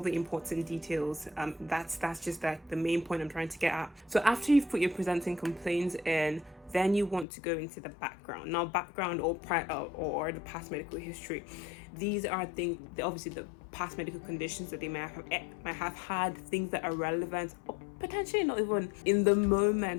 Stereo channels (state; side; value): drops out; right; at 7.2 s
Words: important details. That's just like the main point I'm trying to get at. So after you've put your presenting complaints in, then you want to go into the background. Now, background or the past medical history. These are things, obviously the past medical conditions that they might have had, things that are relevant or potentially not even in the